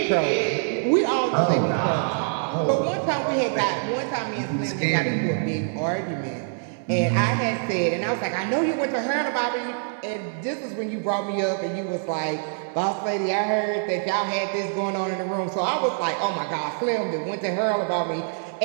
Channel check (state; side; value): silent; left; 62 dB below the other